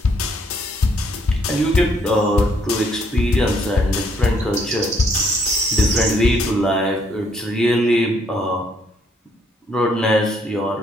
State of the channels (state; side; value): normal; both; correlation 0.68